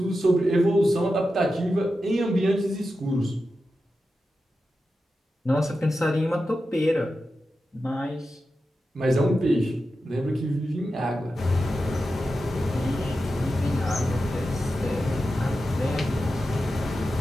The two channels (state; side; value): normal; both; correlation 0.91